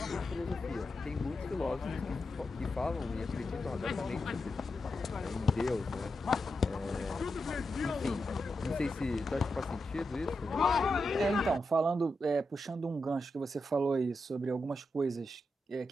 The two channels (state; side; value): normal; both; correlation 0.87